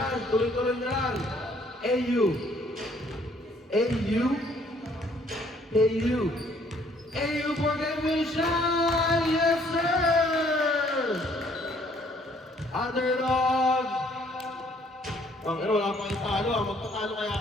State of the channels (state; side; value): normal; both; correlation 0.63